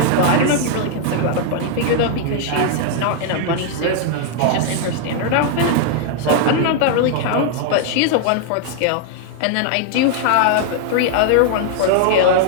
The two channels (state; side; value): different; both; correlation 0.00